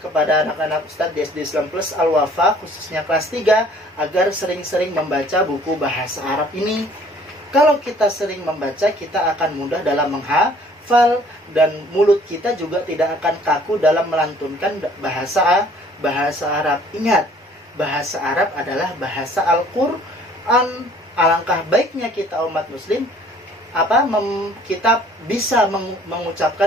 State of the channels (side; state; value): both; normal; correlation 0.56